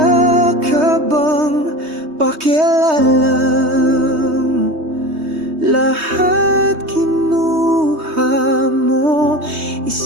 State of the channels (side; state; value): left; late; 3.2 ms